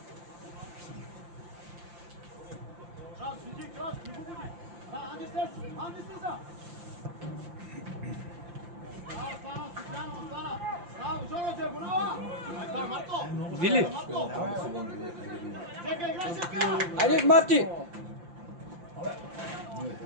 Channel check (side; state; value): left; late; 5.8 ms